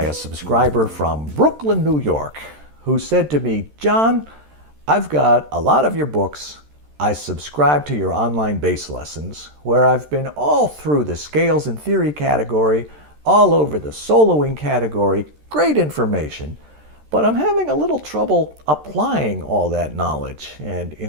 a subscriber from Brooklyn, New York, who said to me, "Jon, I've got a lot of your books. I subscribe to your online bass lessons, where I've been all through the scales and theory category, all over the soloing category, great information, but I'm having a little trouble applying all that knowledge and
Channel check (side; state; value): left; late; 13 ms